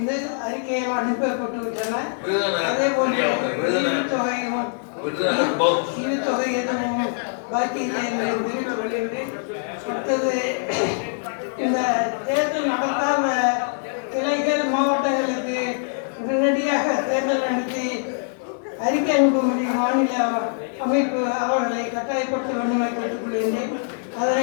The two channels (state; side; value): silent; right; digital silence